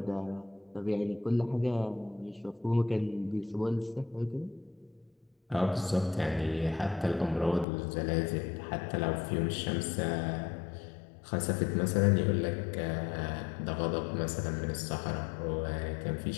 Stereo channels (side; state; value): right; drops out; at 7.7 s